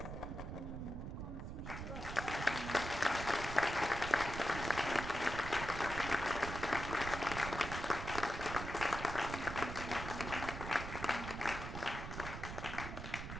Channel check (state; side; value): noise; right; rumble, 7 dB below the sound